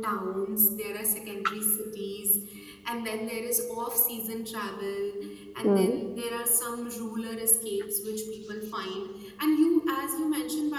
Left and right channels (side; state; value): both; identical; correlation 1.00